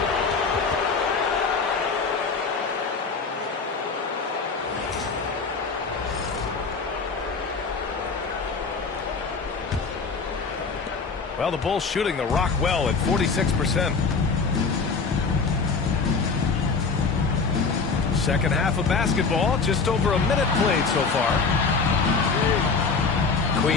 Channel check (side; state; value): right; quieter; 4.7 dB